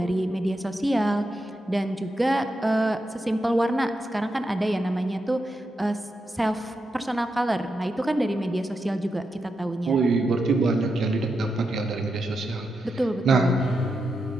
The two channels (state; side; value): normal; both; correlation 0.86